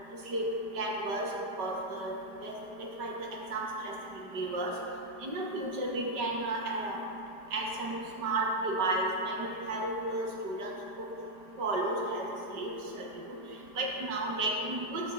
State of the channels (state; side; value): late; left; 5.0 ms